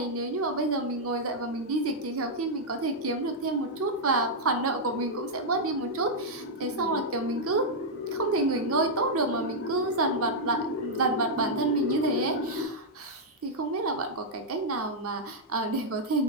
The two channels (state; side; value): normal; both; correlation -0.05